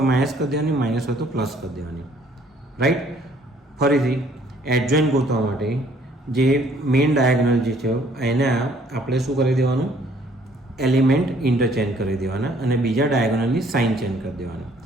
માઇનસ કરી દેવાની, માઇનસ હોય તો પ્લસ કરી દેવાની. રાઈટ. ફરીથી એડજોઇન્ટ ગોતવા માટે જે મેઇન ડાયાગોનલ જે છે એને આપણે શું કરી દેવાનું? એલિમેન્ટ ઇન્ટરચેન્જ કરી દેવાના અને બીજા ડાયાગોનલની સાઇન ચેન્જ કરી દેવાના.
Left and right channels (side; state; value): both; normal; correlation 0.61